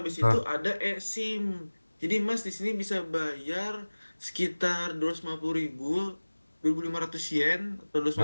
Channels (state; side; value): inverted; both; correlation -1.00